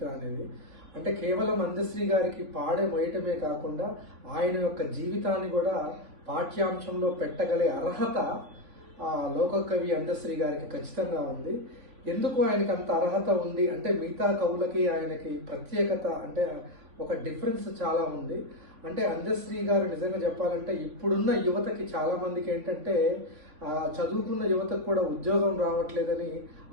అనేది. అంటే కేవలం అందశ్రీ గారికి పాడే మోయటమే కాకుండా ఆయన యొక్క జీవితాన్ని కూడా పాఠ్యాంశంలో పెట్టగలే అర్హత లోక కవి అందశ్రీ గారికి ఖచ్చితంగా ఉంది. ఎందుకు ఆయనకి అంత అర్హత ఉంది అంటే మిగతా కవులకి ఆయనకి ప్రత్యేకత అంటే ఒక డిఫరెన్స్ చాలా ఉంది. అంటే అందశ్రీ గారు నిజంగా చెప్పాలంటే ఇప్పుడున్న యువతకి చాలా మందికి ఏంటంటే చదువుకున్న యువతకు కూడా ఉద్యోగం రావట్లేదని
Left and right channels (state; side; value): late; left; 3.3 ms